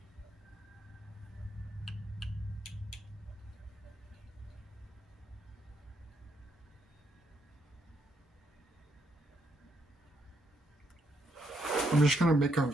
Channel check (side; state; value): both; normal; correlation 0.76